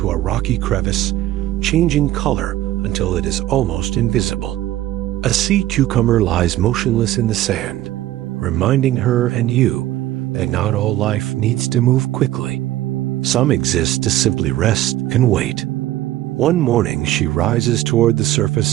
a rocky crevice, changing color until it is almost invisible. A sea cucumber lies motionless in the sand, reminding her and you that not all life needs to move quickly. Some exist to simply rest and wait. One morning she rises toward the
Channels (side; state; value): left; quieter; 14.5 dB